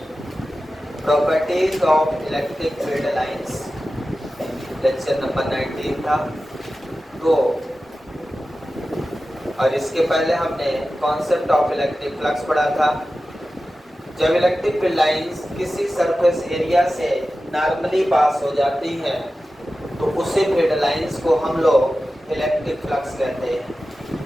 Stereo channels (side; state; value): both; normal; correlation 0.94